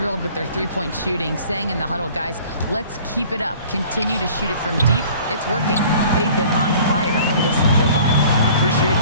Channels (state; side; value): inverted; both; correlation -0.49